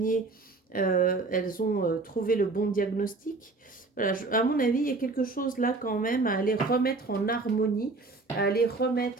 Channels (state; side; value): quieter; left; 3.6 dB